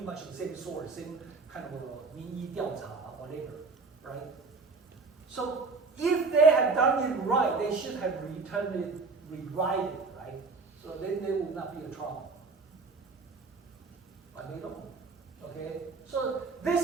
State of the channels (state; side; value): quieter; left; 4.2 dB